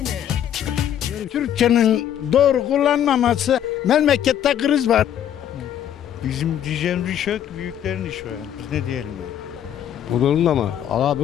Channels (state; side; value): quieter; right; 10.1 dB